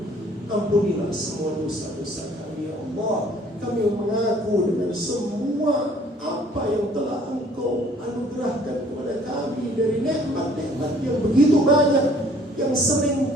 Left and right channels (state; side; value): normal; both; correlation 0.57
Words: Ampunilah semua dosa-dosa kami ya Allah. Kami mengaku dengan semua apa yang telah Engkau anugerahkan kepada kami dari nikmat-nikmat yang begitu banyak, yang